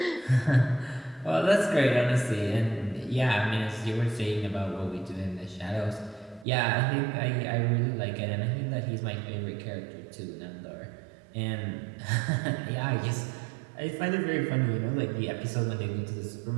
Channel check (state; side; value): drops out; left; at 6.5 s